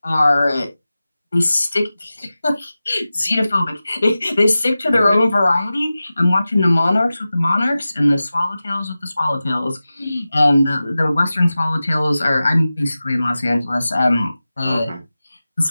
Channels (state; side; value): inverted; both; correlation -0.95